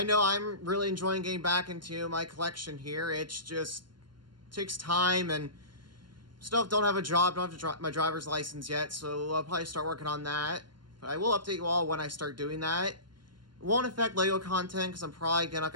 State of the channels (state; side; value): late; left; 0.72 ms